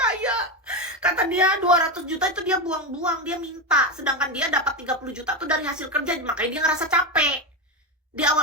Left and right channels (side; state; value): both; normal; correlation 0.14